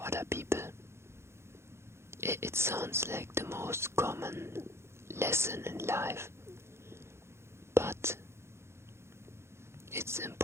other people. It sounds like the most common lesson in life, but it's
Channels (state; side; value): late; left; 0.13 ms